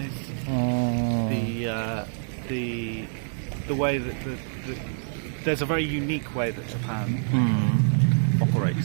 the way that there's a very unique way that Japan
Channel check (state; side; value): silent; left; digital silence